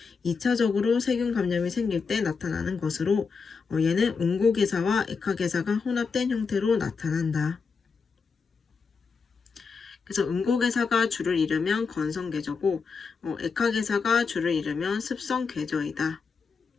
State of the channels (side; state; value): right; quieter; 5.2 dB